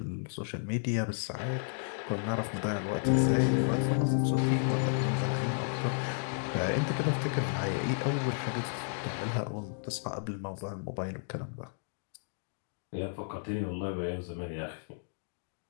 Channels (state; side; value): silent; right; digital silence